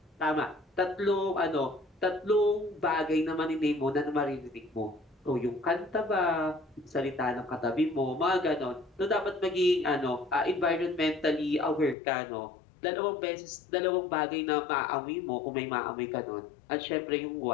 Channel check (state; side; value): drops out; right; at 12.0 s